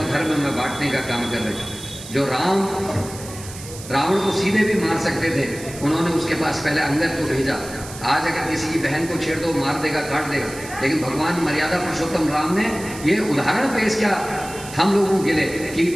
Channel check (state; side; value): noise; right; hiss, 14 dB below the sound